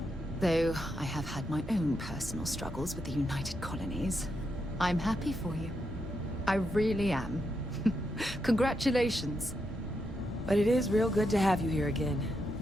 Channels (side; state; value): both; normal; correlation 0.83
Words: Though I have had my own personal struggles with the United Colonies. I'm happy for you. I really am. Congratulations. But it is real good to have you here again.